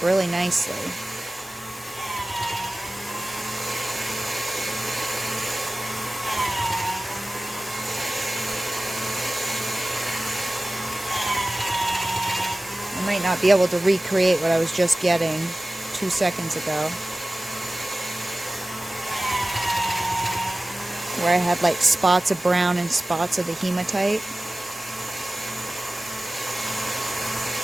really nicely. I might not be able to recreate what I was just getting 2 seconds ago, where I had like spots of brown and spots of the hematite.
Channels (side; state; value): both; normal; correlation 0.97